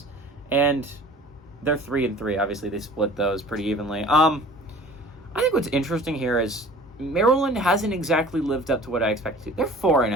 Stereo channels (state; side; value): normal; both; correlation 0.46